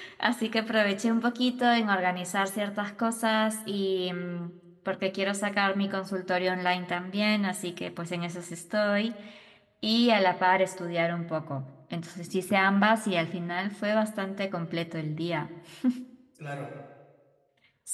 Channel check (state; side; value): identical; both; correlation 1.00